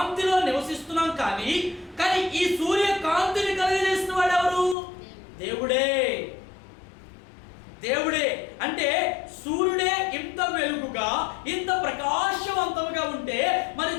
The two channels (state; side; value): drops out; right; at 4.8 s